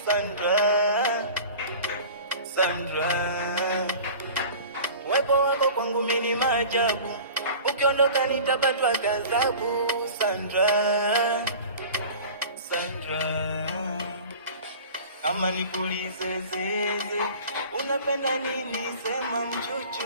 Sandra, Sandra, wepo wako kwangu mimi ni maajabu, ukiondoka nitapatwa ghadhabu. Sandra, Sandra, ama nipulize zeze, unapenda nini? Sema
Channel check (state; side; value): inverted; both; correlation -0.40